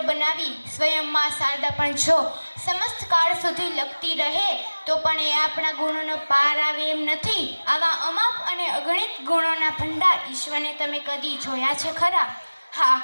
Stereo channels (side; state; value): both; inverted; correlation -1.00